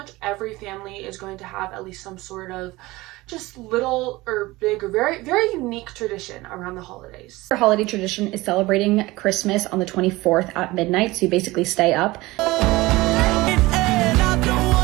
every family is going to have at least some sort of just little or big or very, very unique tradition around the holidays. Our holiday tradition is celebrating Christmas on the 24th at midnight, so you basically stay up.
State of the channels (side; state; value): left; quieter; 20.2 dB